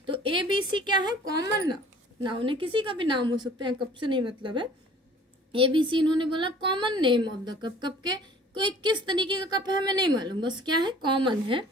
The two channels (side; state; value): both; normal; correlation 0.50